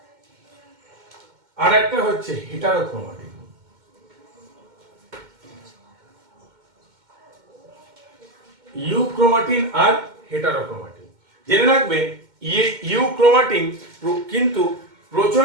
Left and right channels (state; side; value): late; left; 2.1 ms